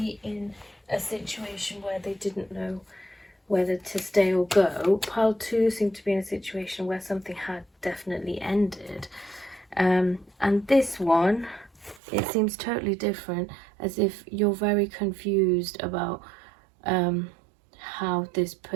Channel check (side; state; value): left; drops out; at 12.0 s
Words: in a situation where they didn't know whether to stay or go. Pile 2 seemed to be in a situation where something had definitely ended. And this one, it seems totally different, as if you're very confused about how this